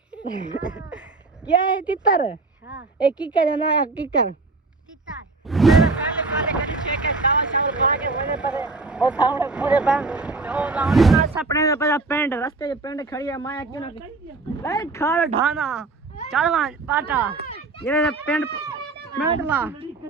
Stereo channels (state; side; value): quieter; left; 3.6 dB